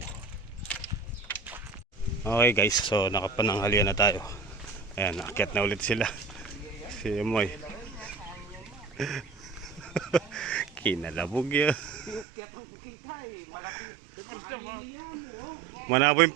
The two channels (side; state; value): left; drops out; at 12.2 s